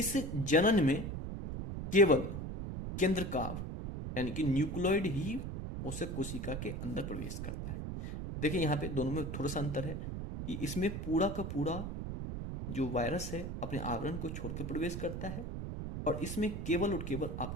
जनन में केवल केंद्रकाव यानी कि न्यूक्लियोइड ही पोषक कोशिका के अंदर प्रवेश करता है। देखिए यहाँ पे दोनों में थोड़ा सा अंतर है कि इसमें पूरा का पूरा जो वायरस है अपने आवरण को छोड़कर प्रवेश करता है, और इसमें केवल और केवल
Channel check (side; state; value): right; noise; rumble, 5 dB below the sound